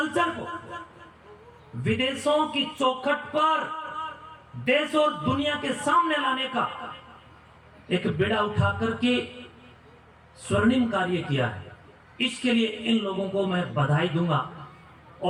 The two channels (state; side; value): identical; both; correlation 1.00